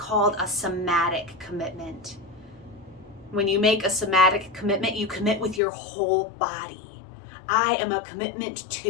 a somatic commitment. When you make a somatic commitment, you commit with your whole body. I am a commitment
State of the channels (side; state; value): right; drops out; at 5.6 s